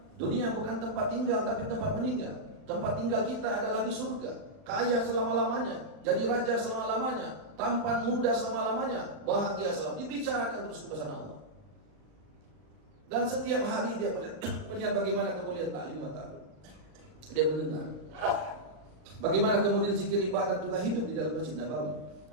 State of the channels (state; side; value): late; left; 39 ms